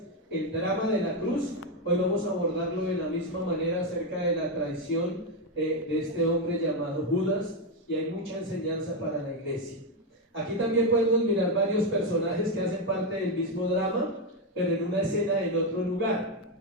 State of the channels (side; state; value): both; normal; correlation 0.06